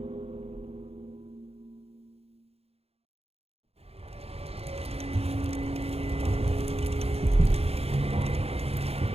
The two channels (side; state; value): left; late; 0.29 ms